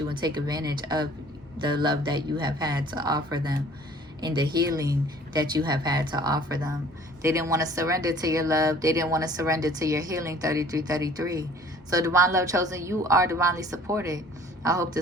and take advantage of the love that you have had to offer them and the healing that you have had to offer them. They didn't want to surrender to your love. They didn't want to surrender to your healing. 3333. So divine love chosen, you are divinely supported. I hope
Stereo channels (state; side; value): normal; both; correlation 0.52